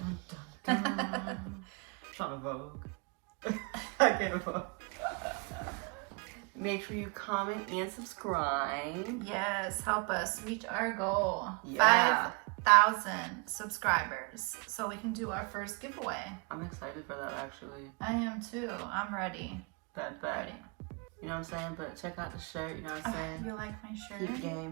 dun, dun. Trying to Vogue. I can't Vogue. Make sure you comment and subscribe. Yes, help us reach our goal. Yeah. 5,000 subscribers so we can do our first giveaway. I'm excited for that, actually. I am too. I'm ready. Ready. You know what I'm saying? But check out the shirt, you know what I'm saying? You like my shirt?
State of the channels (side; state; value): left; quieter; 32.7 dB